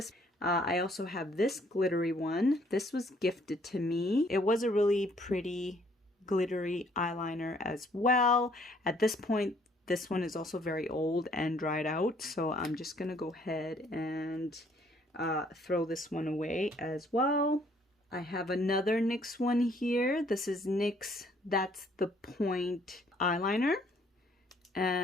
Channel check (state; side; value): normal; both; correlation 0.64